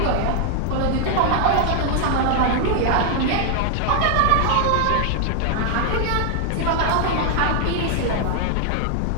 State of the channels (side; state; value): both; different; correlation 0.00